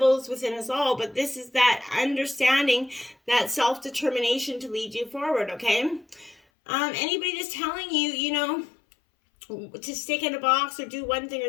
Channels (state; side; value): drops out; right; at 6.4 s